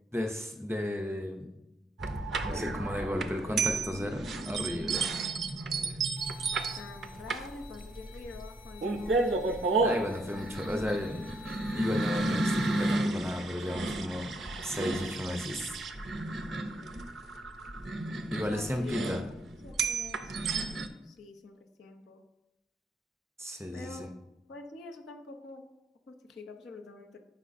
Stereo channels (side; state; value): both; normal; correlation 0.73